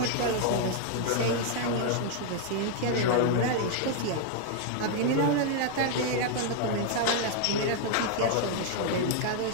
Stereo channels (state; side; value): different; both; correlation 0.00